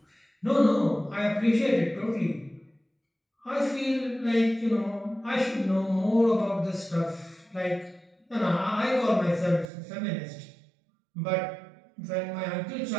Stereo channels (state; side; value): drops out; left; at 9.7 s